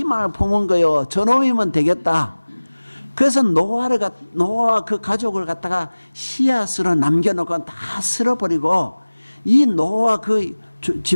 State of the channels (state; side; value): inverted; both; correlation -1.00